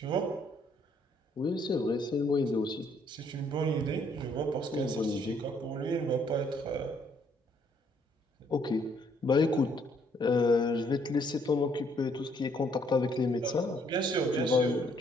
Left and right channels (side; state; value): both; normal; correlation 0.67